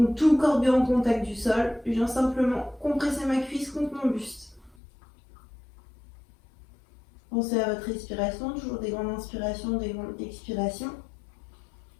Donc tout le corps bien en contact du sol, je viens simplement compresser ma cuisse contre mon buste. Pensez à votre respiration, toujours des grandes inspirations, des grandes expirations.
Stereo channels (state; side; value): drops out; right; at 4.8 s